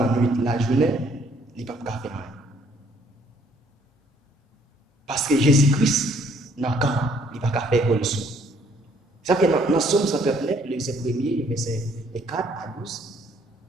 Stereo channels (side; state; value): both; normal; correlation 0.64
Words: nuit, la journée, il ne peut pas faire rien. Parce que Jésus-Christ, il ne peut pas faire pour le sou. Ça fait dans Somme 139, le verset 1er, verset 4 à 12,